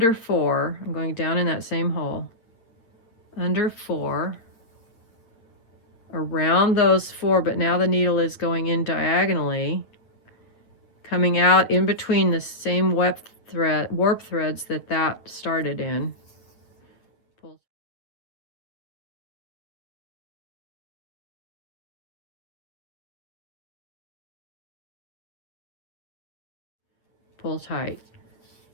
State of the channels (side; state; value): right; late; 8.9 ms